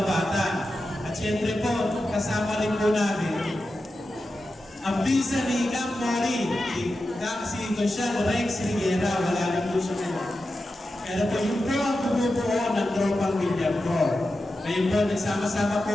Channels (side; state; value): both; normal; correlation 0.91